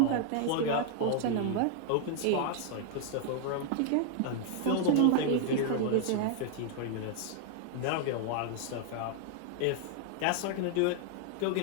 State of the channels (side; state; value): both; different; correlation 0.00